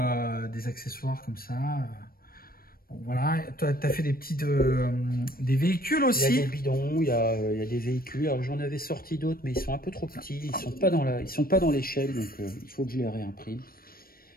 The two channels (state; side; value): late; right; 0.43 ms